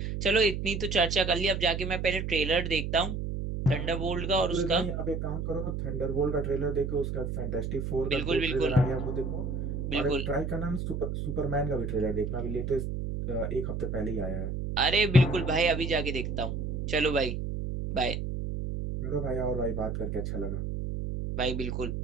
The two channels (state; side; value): noise; right; hum, 3 dB below the sound